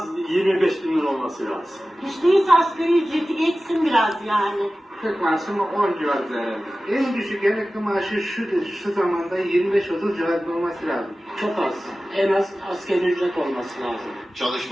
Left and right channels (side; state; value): both; normal; correlation 0.96